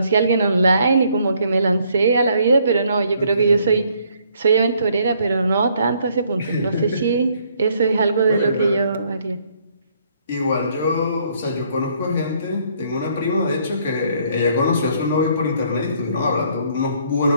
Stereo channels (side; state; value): both; inverted; correlation -0.67